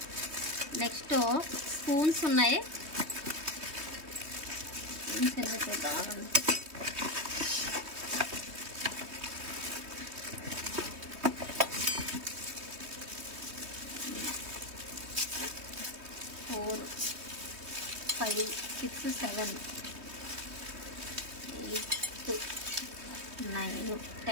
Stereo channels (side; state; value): left; late; 3.2 ms